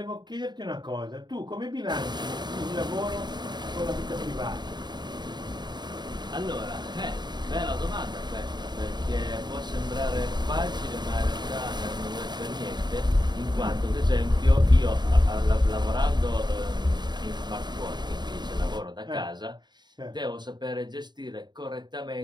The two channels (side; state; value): left; late; 0.21 ms